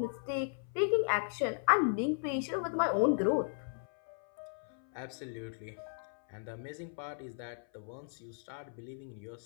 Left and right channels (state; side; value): silent; right; 54 dB below the other